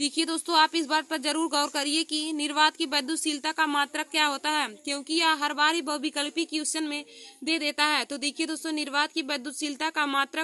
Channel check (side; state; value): both; identical; correlation 1.00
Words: दोस्तों, आप इस बात पर जरूर गौर करिए कि निर्वात की वैद्युतशीलता का मात्रक क्या होता है, क्योंकि यह हर बार ही बहुविकल्पी क्वेश्चन में दे देता है। तो देखिए दोस्तों, निर्वात की वैद्युतशीलता का